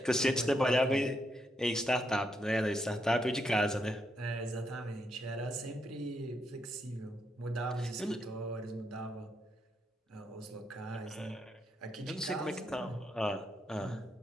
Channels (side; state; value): both; normal; correlation 0.78